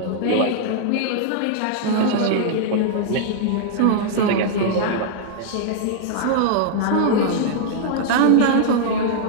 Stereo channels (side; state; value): both; different; correlation -0.01